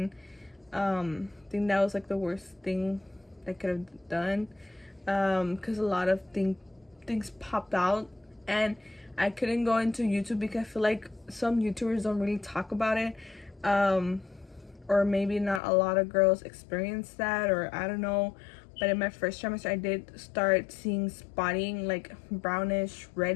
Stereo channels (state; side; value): drops out; right; at 15.6 s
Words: I think that was like the worst thing I could have done, because a lot of things popped out, and I couldn't go into YouTube because I feel like some YouTubers don't really talk about it, or maybe not a lot of girls experience that, or I don't know. But in my first trimester, I did start seeing spotting, like brownish,